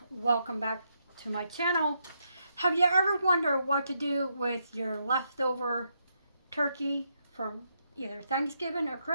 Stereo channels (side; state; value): both; inverted; correlation -0.79